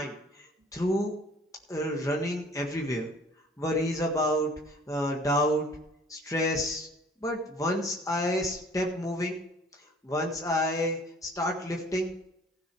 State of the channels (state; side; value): normal; both; correlation 0.52